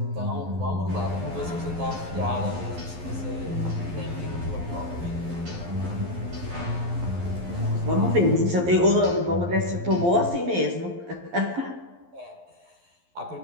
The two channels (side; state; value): left; late; 11 ms